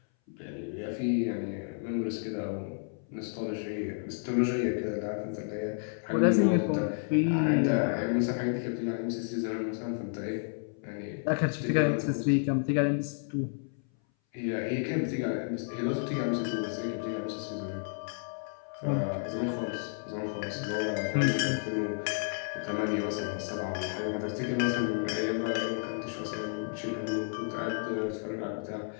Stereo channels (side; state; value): right; silent; 57 dB below the other